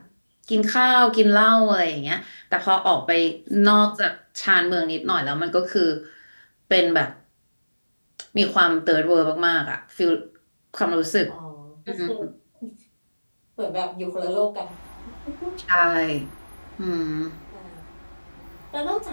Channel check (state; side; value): inverted; both; correlation -1.00